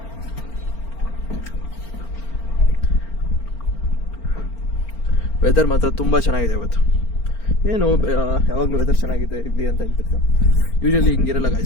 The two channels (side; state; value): right; late; 4.4 ms